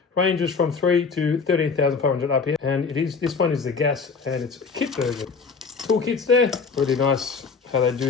ranges from 3 to 13,500 RPM, and this one is the gas, and it's a kit version. Toolkits there, really nice how they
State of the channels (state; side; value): quieter; right; 5.0 dB